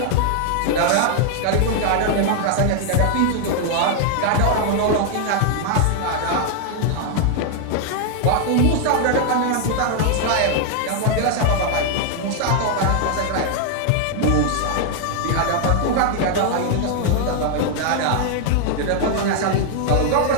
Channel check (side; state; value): both; different; correlation 0.00